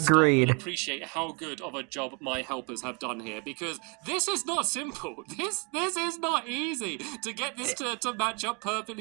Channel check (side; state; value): left; quieter; 33.0 dB